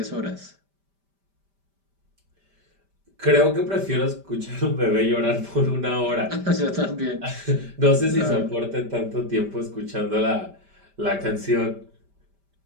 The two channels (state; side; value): late; left; 5.1 ms